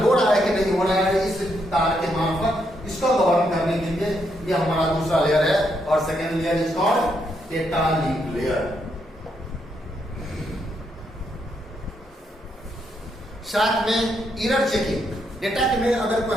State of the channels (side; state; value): both; normal; correlation 0.77